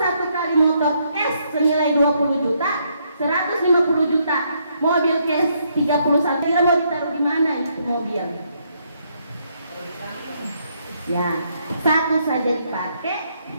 kali motor cash senilai 20 juta, 150 juta. Mobil cash 31. Kira mau ditaruh di mana itu mobil? Ya, satu saja dipakai,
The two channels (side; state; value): both; inverted; correlation -0.74